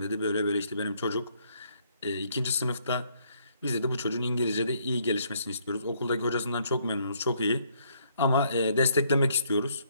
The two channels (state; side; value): inverted; both; correlation -0.68